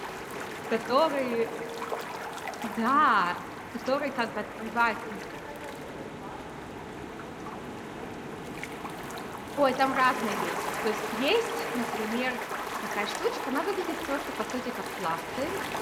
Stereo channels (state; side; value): identical; both; correlation 1.00